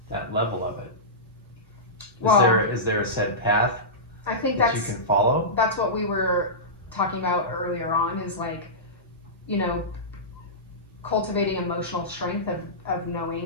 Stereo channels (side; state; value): both; normal; correlation -0.17